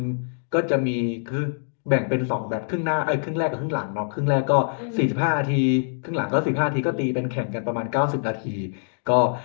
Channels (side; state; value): right; silent; digital silence